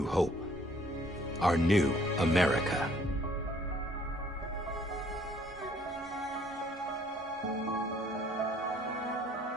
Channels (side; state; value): both; normal; correlation 0.61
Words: hope. Our new America.